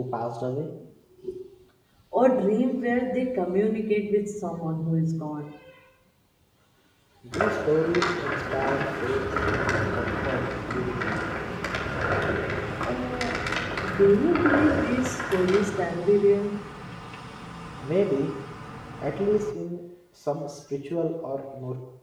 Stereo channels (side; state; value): both; identical; correlation 1.00